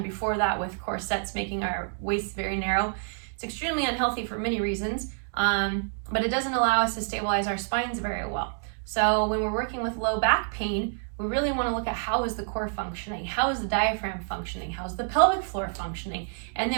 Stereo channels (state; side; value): silent; left; digital silence